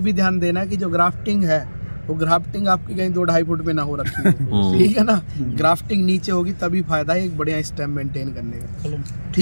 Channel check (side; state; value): both; inverted; correlation -1.00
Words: भी ध्यान देना कि जो ग्राफ्टिंग है वो ग्राफ्टिंग आपकी कहीं 2-2.5 फुट में ना हो रखी है, ठीक है ना, ग्राफ्टिंग नीचे होगी तभी फायदा है एक बढ़िया स्टेम मेंटेन करने का,